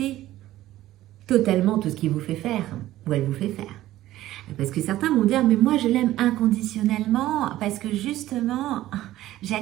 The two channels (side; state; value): left; quieter; 14.8 dB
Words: totalement tout ce qu'il vous fait faire ou elle vous fait faire. Parce que certains vont dire, mais moi je l'aime inconditionnellement parce que justement,